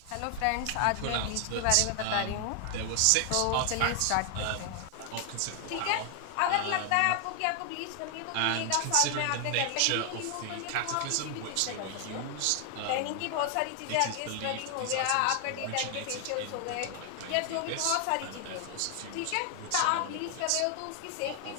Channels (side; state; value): both; different; correlation 0.00